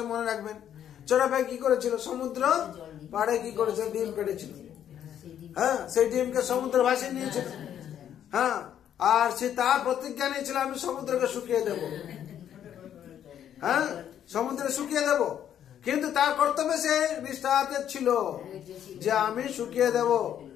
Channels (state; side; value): quieter; right; 10.0 dB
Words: মনে রাখবেন। চড়াই পাখি কি করেছিল, সমুদ্র পাড়ে কি করেছিল, ডিম পেড়েছিল। হ্যাঁ, সেই ডিমকে সমুদ্র ভাসিয়ে নিয়েছিল। হ্যাঁ, আর সে তার প্রতিজ্ঞা নিয়েছিল আমি সমুদ্রকে শুকিয়ে দেব। হ্যাঁ, সমুদ্রে শুকিয়ে দেব। কিন্তু তার কর্তব্যে সে নিষ্ঠাতে ছিল যে আমি শুকিয়ে দেব,